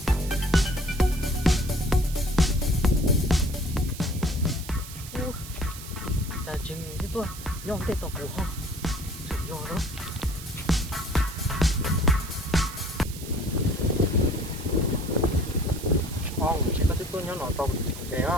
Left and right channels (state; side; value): noise; right; hiss, 13 dB below the sound